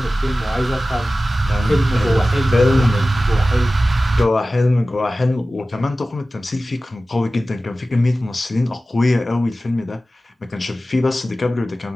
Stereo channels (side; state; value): both; normal; correlation 0.95